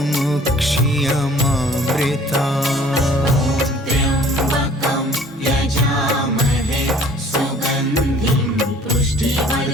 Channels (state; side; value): normal; both; correlation 0.52